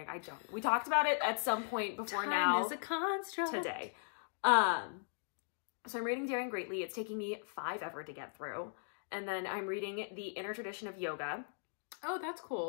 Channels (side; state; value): right; silent; digital silence